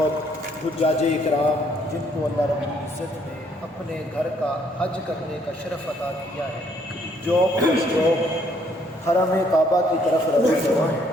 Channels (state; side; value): normal; both; correlation 0.67